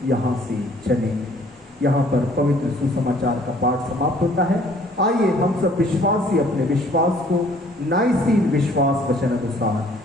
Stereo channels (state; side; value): normal; both; correlation 0.58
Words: यहाँ से चलें। यहाँ पर पवित्र सुसमाचार का पाठ समाप्त होता है। आइए हम सब विश्वासी अपने विश्वास को नाइसीन विश्वास वचन